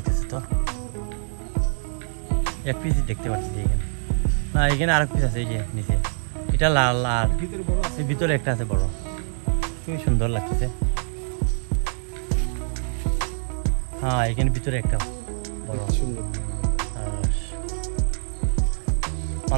তো। এক পিস দেখতে পাচ্ছি এখানে, না এখানে আরেক পিস আছে এই যে নিচে, এটা লাল আর ভিতরে একটা আছে বড়, খুবই সুন্দর লাগতেছে। হ্যাঁ এখানে ভিতরে একটা বড় সুন্দর আনারস।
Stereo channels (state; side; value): silent; left; digital silence